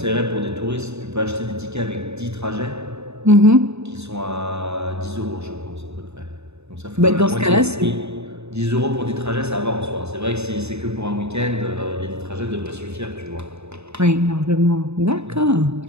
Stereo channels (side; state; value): left; late; 0.80 ms